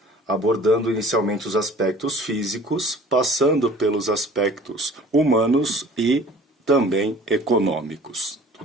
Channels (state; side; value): normal; both; correlation 0.48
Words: abordando inicialmente os aspectos físicos, passando pelos aspectos humanos e também econômicos.